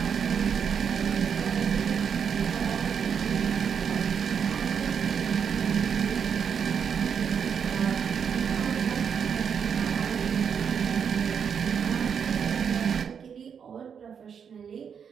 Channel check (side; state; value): left; quieter; 7.2 dB